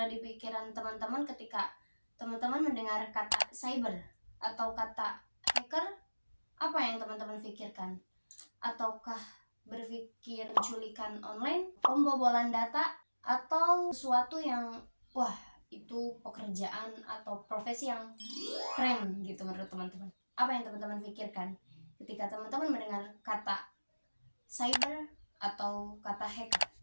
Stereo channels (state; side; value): inverted; both; correlation -1.00